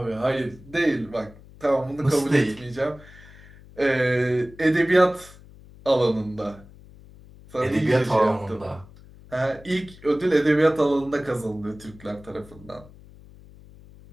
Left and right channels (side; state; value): left; noise; hum, 22 dB below the sound